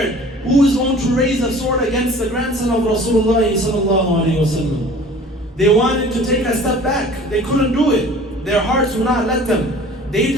Who is going to raise a sword against the grandson of Rasulullah sallallahu alayhi wasallam? They wanted to take a step back. They couldn't do it. Their hearts would not let them. They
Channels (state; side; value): normal; both; correlation 0.46